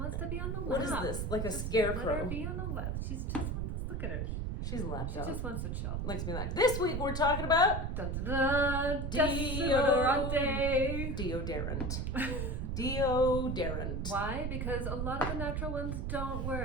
to be on the lap. What is this? Like a Just scarecrow. Let her be on the lap. She's just wants. Look at her. She's a lap She dog. just wants to chill. Likes me like. This week we're talking about Dun dun dun. Deodorant. Deodorant. Deodorant. Why? Because a lot of the natural ones don't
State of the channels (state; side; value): noise; right; rumble, 1 dB below the sound